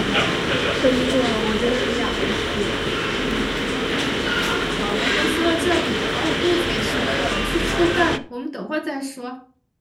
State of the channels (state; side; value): identical; both; correlation 1.00